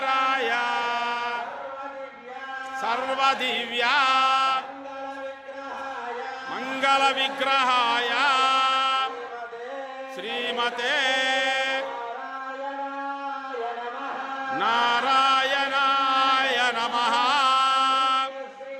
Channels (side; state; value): both; identical; correlation 1.00